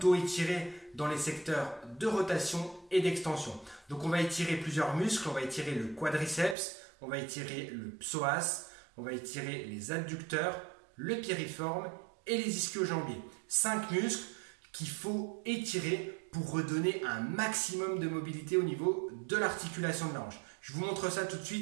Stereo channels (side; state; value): left; drops out; at 6.6 s